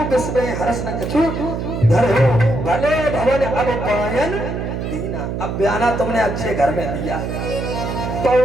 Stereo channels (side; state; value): right; noise; hum, 4 dB below the sound